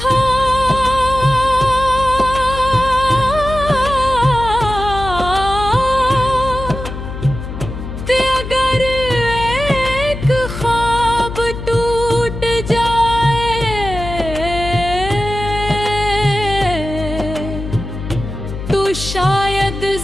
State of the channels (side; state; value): left; noise; hum, 8 dB below the sound